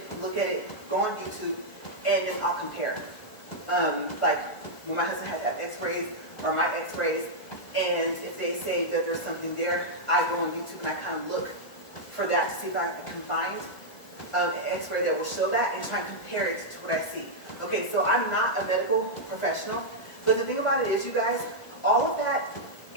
look at it, go on YouTube, and then I'll compare. Like when my husband had to have x-rays, or my x-rays, and if they say that there's something there, I go on YouTube and I kind of look for that to see if I can find an x-ray that will show that, and try and compare it to what I see. Okay, so I'm not a medical professional, but the thing about it is, you guys, all of that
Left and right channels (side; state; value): right; late; 1.6 ms